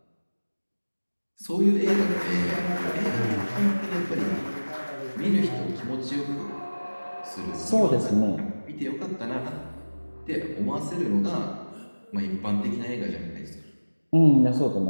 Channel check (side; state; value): both; inverted; correlation -1.00